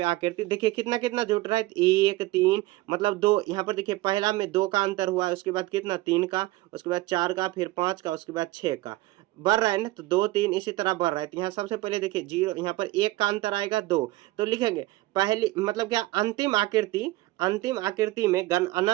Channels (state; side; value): quieter; left; 18.8 dB